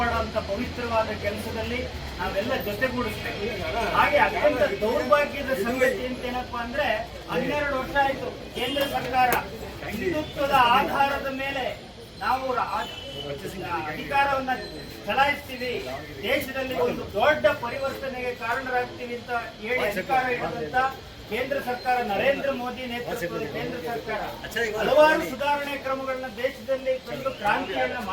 ಪವಿತ್ರವಾದ ಕೆಲಸದಲ್ಲಿ ನಾವೆಲ್ಲ ಜೊತೆಗೂಡಿಸ್ಬೇಕು. ಹಾಗೆ ಅತ್ಯಂತ ದೌರ್ಭಾಗ್ಯದ ಸಂಗತಿ ಅಂತ ಏನಪ್ಪಾ ಅಂದ್ರೆ, 12 ವರ್ಷ ಆಯ್ತು ಕೇಂದ್ರ ಸರ್ಕಾರ ಹಿಂದುತ್ವದ ಆಧಾರದ ಮೇಲೆ ನಾವು ಅಧಿಕಾರವನ್ನ ಚಲಾಯಿಸ್ತೀವಿ, ದೇಶದಲ್ಲಿ ಒಂದು ದೊಡ್ಡ ಪರಿವರ್ತನೆಗೆ ಕಾರಣರಾಗ್ತೀವಿ ಅಂತ ಹೇಳಿ ಅಧಿಕಾರ ಇರುವಂತ ಕೇಂದ್ರ ಸರ್ಕಾರ, ನರೇಂದ್ರ ಮೋದಿ ನೇತೃತ್ವದ ಕೇಂದ್ರ ಸರ್ಕಾರ ಹಲವಾರು ಸುಧಾರಣೆ ಕ್ರಮಗಳನ್ನ ದೇಶದಲ್ಲಿ ತಂದು ಕ್ರಾಂತಿಯನ್ನ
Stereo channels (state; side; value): identical; both; correlation 1.00